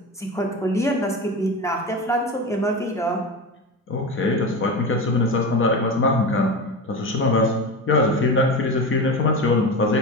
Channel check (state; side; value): normal; both; correlation 0.24